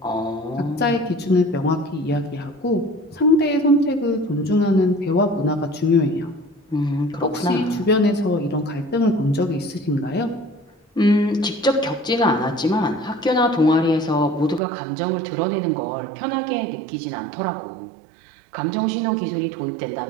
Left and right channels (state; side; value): drops out; left; at 14.6 s